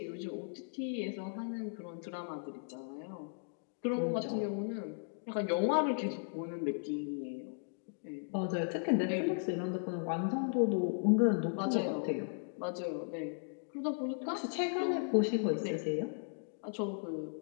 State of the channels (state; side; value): silent; right; digital silence